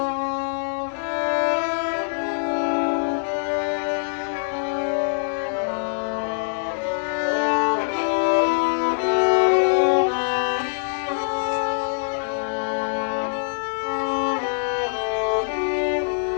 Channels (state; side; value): silent; right; digital silence